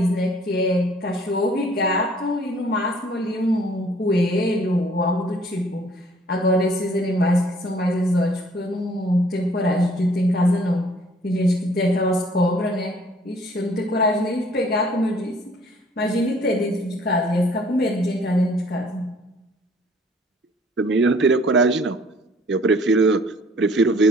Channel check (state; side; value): normal; both; correlation 0.57